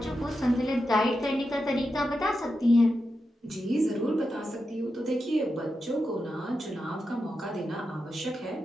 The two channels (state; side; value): normal; both; correlation 0.88